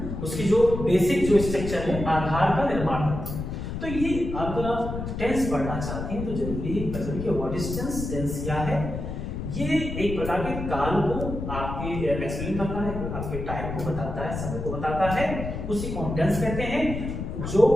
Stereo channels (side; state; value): left; noise; rumble, 5 dB below the sound